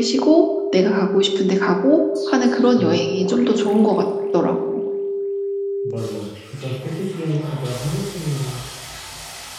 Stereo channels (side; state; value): both; identical; correlation 1.00